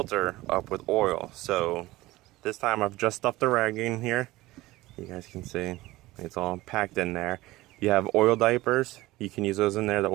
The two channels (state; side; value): quieter; left; 18.6 dB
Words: up with oil. So this time I've just stuffed the rag in here. You guys can see it's all packed in there. You have oil diapers. You can use those in there, the